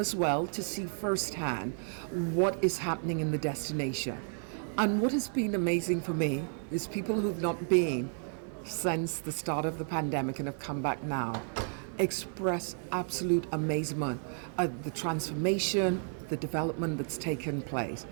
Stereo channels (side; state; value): left; silent; 56 dB below the other